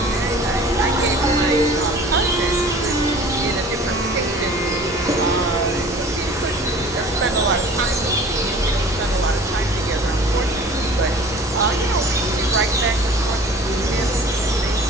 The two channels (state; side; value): normal; both; correlation 0.46